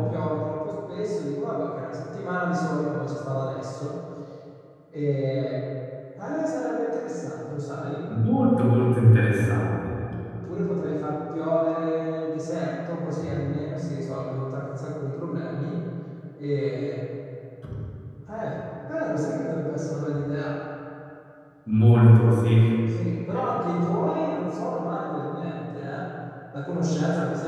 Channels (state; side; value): identical; both; correlation 1.00